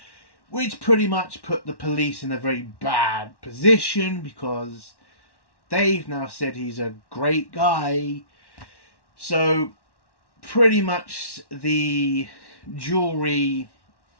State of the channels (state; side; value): late; right; 1.1 ms